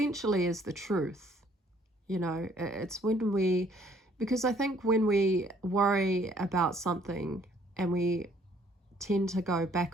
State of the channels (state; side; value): normal; both; correlation 0.61